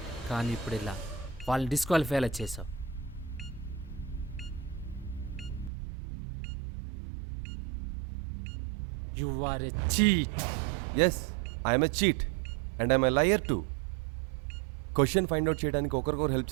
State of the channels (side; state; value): left; drops out; at 5.7 s